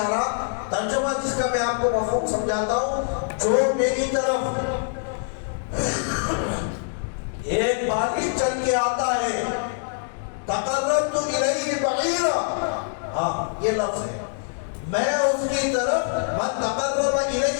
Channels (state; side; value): silent; right; digital silence